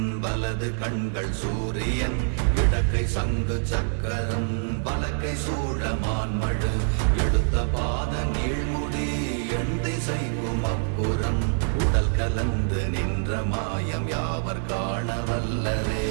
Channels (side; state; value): left; silent; digital silence